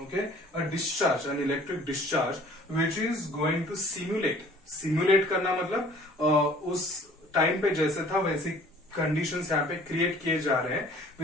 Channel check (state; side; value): normal; both; correlation 0.52